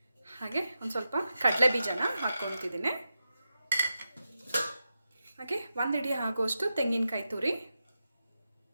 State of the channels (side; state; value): both; inverted; correlation -0.89